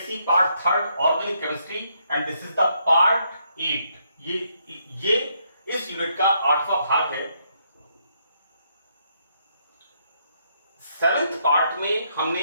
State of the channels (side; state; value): both; inverted; correlation -0.75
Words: Part 3rd Organic Chemistry and this is the Part 8. ये इस unit का 8वां भाग है. 7th part में हमने